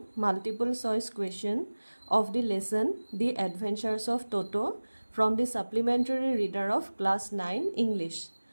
multiple choice question of the lesson The Adventures of Toto from the supplementary reader of class 9 English.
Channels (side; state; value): both; inverted; correlation -1.00